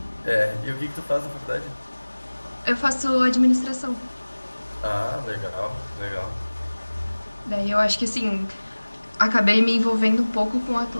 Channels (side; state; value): both; inverted; correlation -1.00